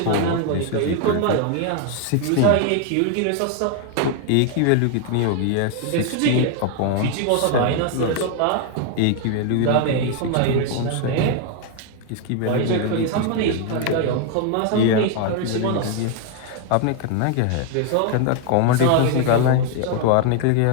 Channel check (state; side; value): different; both; correlation 0.00